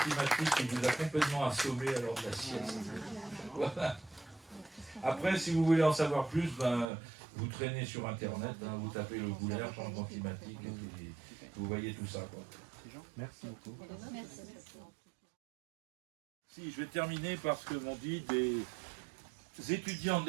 qui vous a complètement assommé à l'heure de la sieste. Voilà. Après, si vous voulez en savoir plus, ben, vous traînez sur Internet, hein, vous tapez le Goulaire, changement climatique, et puis vous voyez tout ça, quoi. Merci beaucoup. Merci. Si, je vais terminer par ce que m'ont dit des étudiants de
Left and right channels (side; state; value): left; drops out; at 6.9 s